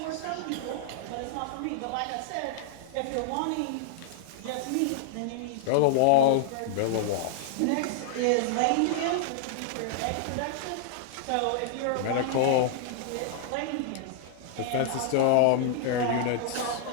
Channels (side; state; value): both; different; correlation -0.01